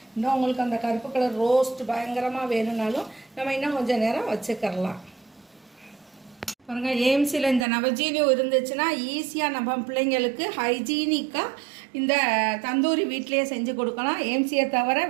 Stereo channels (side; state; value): left; drops out; at 7.7 s